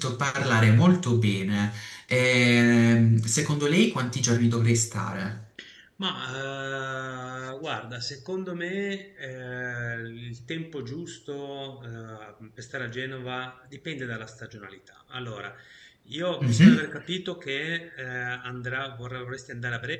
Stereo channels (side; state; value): both; identical; correlation 1.00